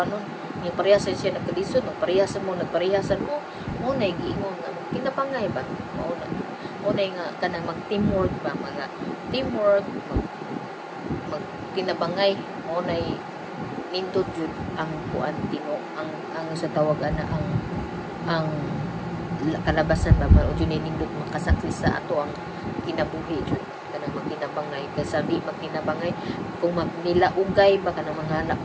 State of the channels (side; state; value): both; identical; correlation 1.00